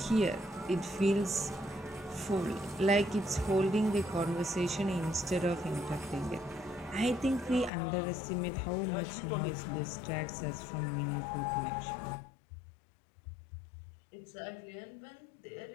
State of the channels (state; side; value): drops out; right; at 7.7 s